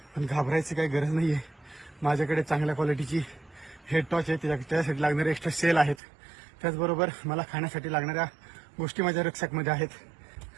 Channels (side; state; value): left; drops out; at 6.0 s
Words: पण घाबरायची काही गरज नाहीये. माझ्याकडे चांगल्या क्वालिटीची हेड टॉर्च आहे, त्यासाठी लागणारे एक्स्ट्रा सेल आहेत. त्याचबरोबर मला खाण्यासाठी लागणाऱ्या गोष्टी माझ्या रक्षकमध्ये आहेत.